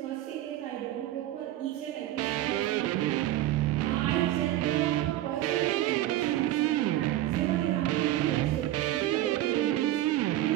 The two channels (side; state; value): left; quieter; 14.3 dB